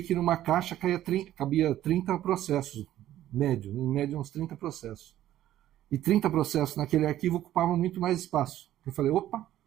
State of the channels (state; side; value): quieter; left; 13.0 dB